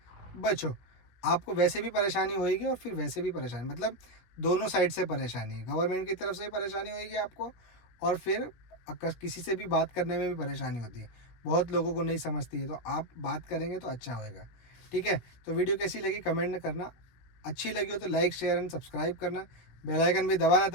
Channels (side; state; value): right; late; 16 ms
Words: बचो। आपको वैसे भी परेशानी होएगी और फिर वैसे भी परेशानी, मतलब दोनों साइड से परेशानी है। गवर्नमेंट की तरफ से भी परेशानी होएगी आपको, और फिर किसी से भी बात करने में भी परेशानी होती है। बहुत लोगों को नहीं समझती है, तो आप बात करेंगे तो अच्छा होएगा। ठीक है, तो वीडियो कैसी लगी कमेंट में करना। अच्छी लगी हो तो लाइक शेयर एंड सब्सक्राइब करना, बेल आइकन भी दबाना